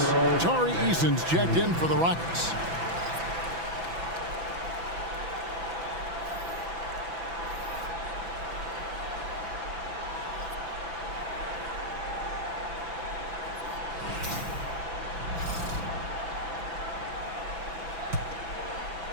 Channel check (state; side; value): late; left; 6.0 ms